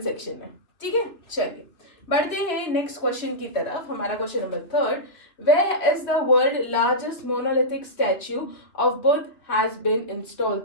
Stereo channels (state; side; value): late; right; 2.9 ms